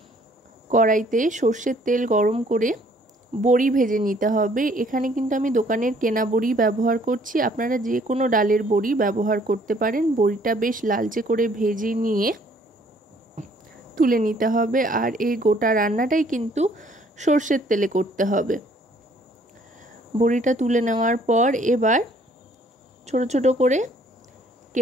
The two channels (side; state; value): both; normal; correlation 0.61